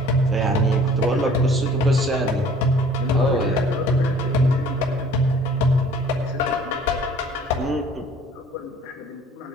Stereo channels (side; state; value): both; normal; correlation 0.51